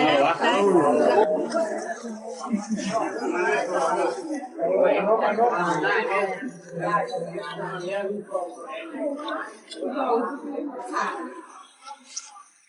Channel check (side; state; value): both; identical; correlation 1.00